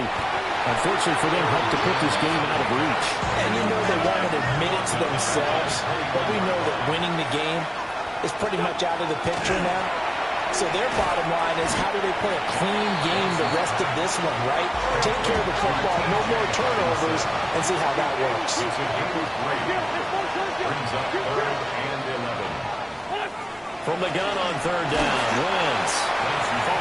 unfortunately for them, helped to put this game out of reach. And you know they won't admit it to themselves, but we know that winning the game is pretty much out of the picture now. So their bottom line is, how do they play a clean game the rest of this one, right? Take care of the football, no more turnovers, and see how that works. Brings up 3rd and 11. From the gun on 3rd down, Wentz.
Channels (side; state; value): both; identical; correlation 1.00